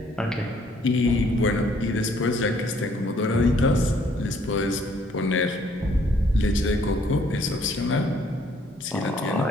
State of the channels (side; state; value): both; normal; correlation 0.64